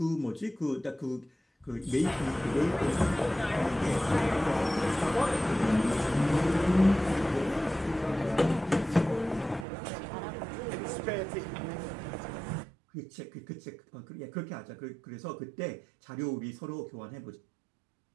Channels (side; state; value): left; drops out; at 9.7 s